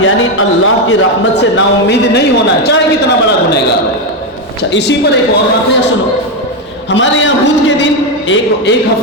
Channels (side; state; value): both; normal; correlation 0.07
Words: یعنی اللہ کی رحمت سے نا امید نہیں ہونا چاہے کتنا بڑا گنہگار ہو۔ اچھا اسی پر ایک اور واقعہ سنو، ہمارے یہاں بدھ کے دن ایک